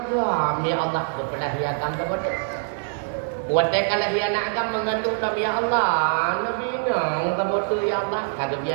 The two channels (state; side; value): silent; left; digital silence